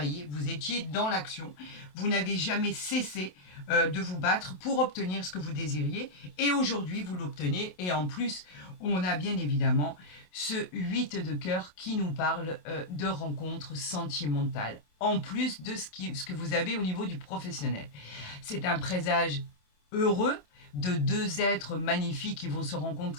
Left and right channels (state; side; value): late; right; 27 ms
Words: vous étiez dans l'action, vous n'avez jamais cessé de vous battre pour obtenir ce que vous désiriez et aujourd'hui vous l'obtenez et en plus on a bien évidemment ce 8 de cœur qui nous parle de rencontres sentimentales en plus de ce que vous avez au niveau du professionnel. C'est un présage heureux de deux êtres magnifiques qui vont se